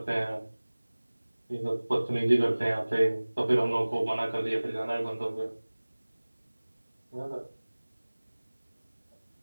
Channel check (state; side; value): inverted; both; correlation -1.00